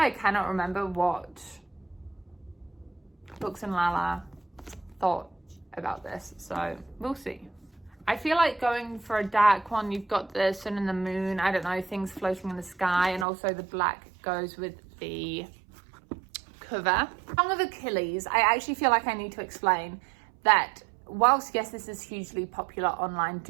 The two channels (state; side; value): drops out; left; at 13.2 s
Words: cannot remember what Books and Lala thought about this. So we'll see. I feel like going for a dark one. You've got the sun and the moon. I don't know, things floating in the sky. And also the black goes with the cover. Song of Achilles. I actually feel like I need to explain that whilst, yes, this is hugely popular online,